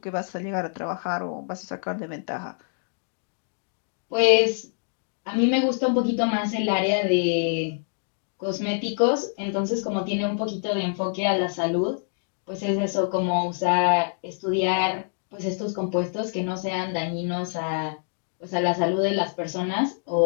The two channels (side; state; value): right; silent; digital silence